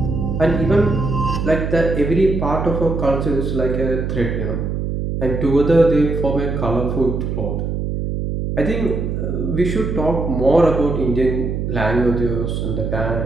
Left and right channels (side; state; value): right; noise; hum, 2 dB below the sound